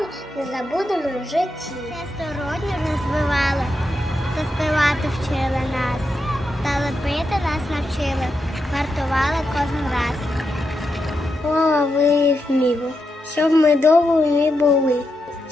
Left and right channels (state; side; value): normal; both; correlation 0.85